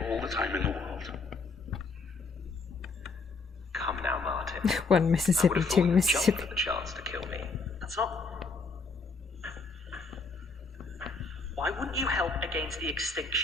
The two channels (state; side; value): quieter; right; 4.0 dB